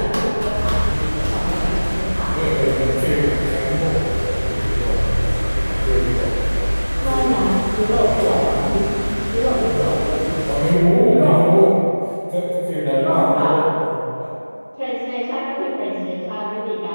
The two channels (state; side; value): inverted; both; correlation -1.00